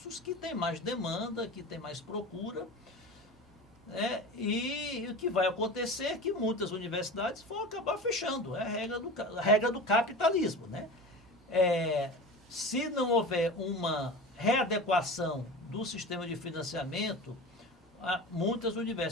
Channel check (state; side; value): normal; both; correlation 0.32